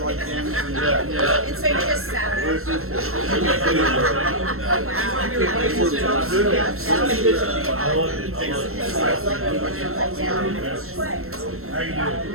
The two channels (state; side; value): late; left; 0.62 ms